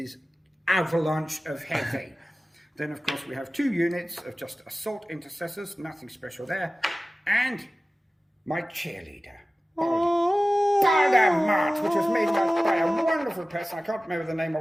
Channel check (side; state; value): both; normal; correlation 0.96